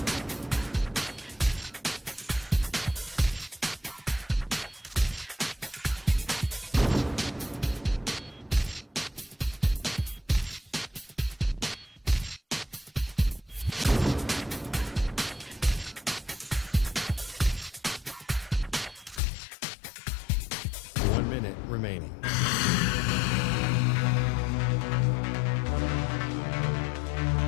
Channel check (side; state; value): right; drops out; at 19.2 s